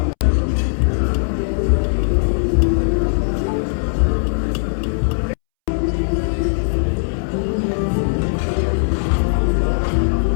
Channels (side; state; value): right; silent; 67 dB below the other